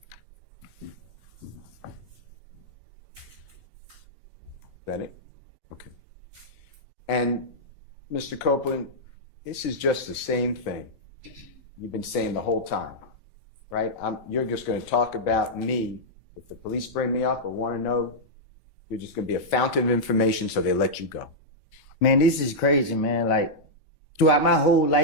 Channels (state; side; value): late; right; 4.0 ms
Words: Is that it? Okay. And Mr. Copeland, this is just the same thing you've been saying the whole time, right? You're just going to talk about me. If the police bring me up or want to know, you're just going to be a fountain of information, so they let you go. Man, this is crazy, man. Like, throughout my whole